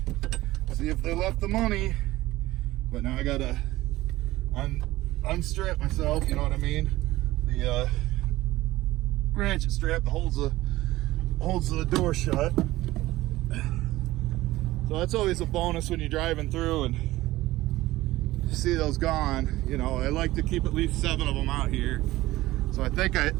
see if they left the money. But now I gotta unstrap myself, you know what I mean? The ratchet strap that holds the door shut. So that's always a bonus when you're driving through and see those gone. You know, I like to keep at least 7 of them out here. So I think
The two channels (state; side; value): quieter; left; 17.4 dB